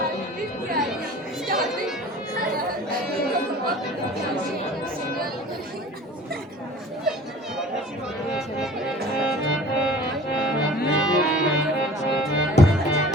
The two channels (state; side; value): normal; both; correlation 0.44